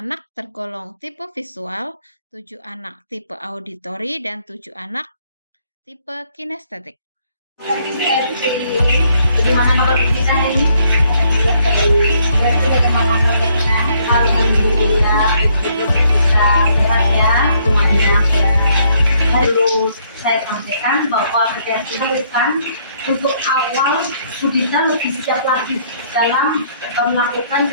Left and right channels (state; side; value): inverted; both; correlation -0.68